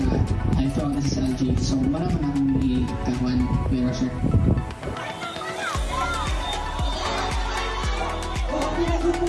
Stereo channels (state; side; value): identical; both; correlation 1.00